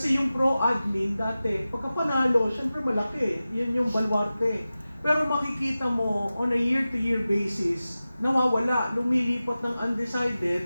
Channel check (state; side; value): inverted; both; correlation -0.95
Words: yung pro-admin dati, pagka panalo, syempre malaki. Yun yung baluarte. Pero makikita mo, on a year-to-year basis, nawawala, lumilipat ng